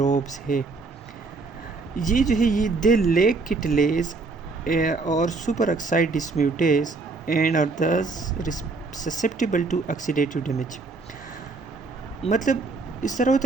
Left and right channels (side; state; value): left; quieter; 3.9 dB